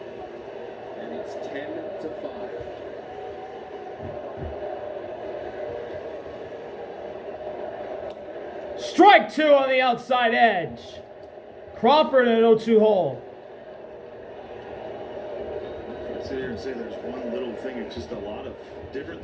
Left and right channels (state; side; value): identical; both; correlation 1.00